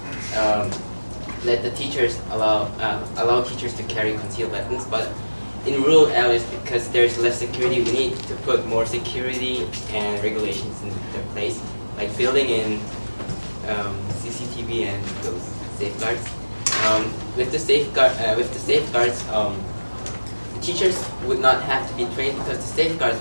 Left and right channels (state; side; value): inverted; both; correlation -1.00